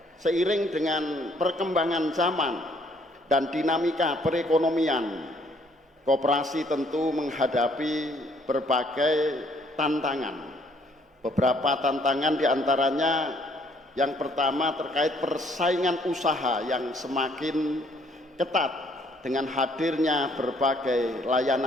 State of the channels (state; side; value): normal; both; correlation 0.64